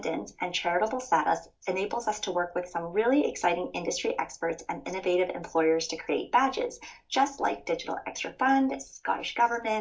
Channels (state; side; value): identical; both; correlation 1.00